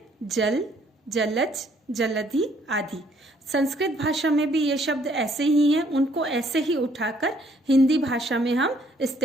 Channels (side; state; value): both; normal; correlation 0.65